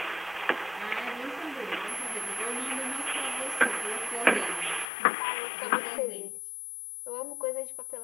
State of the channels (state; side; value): drops out; right; at 4.9 s